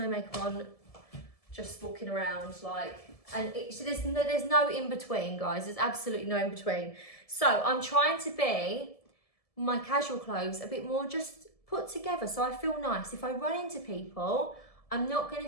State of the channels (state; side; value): late; right; 1.7 ms